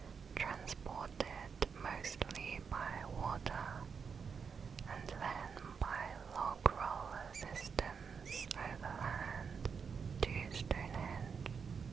transported mostly by water and then by log roller systems overland to Stonehenge.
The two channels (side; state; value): left; quieter; 6.1 dB